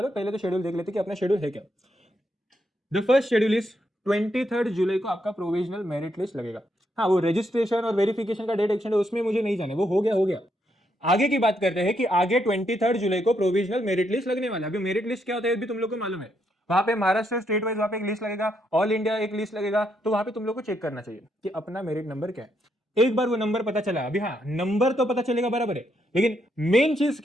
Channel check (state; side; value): normal; both; correlation 0.77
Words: पहले तो शेड्यूल देख लेते कि अपना शेड्यूल है क्या। द फर्स्ट शेड्यूल इज 23 जुलाई को आपका प्रोविजनल मेरिट लिस्ट लगेगा। हाँ, वो रजिस्ट्रेशन और वेरिफिकेशन का डेट एक्सटेंड है, उसमें मुझे नहीं जाने, वो हो गया हो गया। आगे की बात करते हैं कि आगे 23 जुलाई को प्रोविजनल मेरिट लिस्ट लगने वाला है। अभी मेरिट लिस्ट क्या होता है भी तुम लोग को मालूम है। वहां पे महाराष्ट्र स्टेट वाइज वहां पे एक लिस्ट लगेगा, ऑल इंडिया एक लिस्ट लगेगा, तो वहां पे तुम लोग को चेक करना चाहिए कि अपना मेरिट नंबर क्या है। एक बार वो नंबर पता चला, अभी हाँ नंबर तो पता चलेगा बराबर है, लेकिन मेन चीज